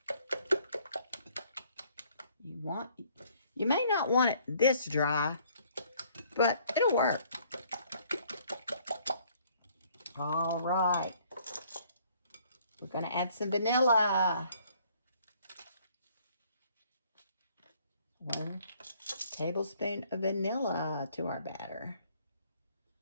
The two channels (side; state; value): both; inverted; correlation -0.61